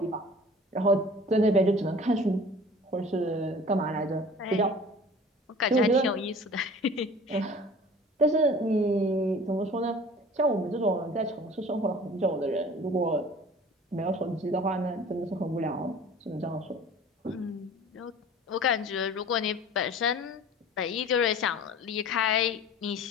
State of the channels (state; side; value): normal; both; correlation 0.44